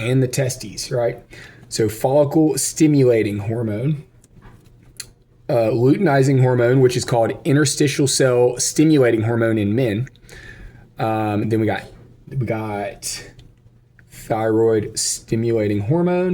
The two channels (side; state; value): both; identical; correlation 1.00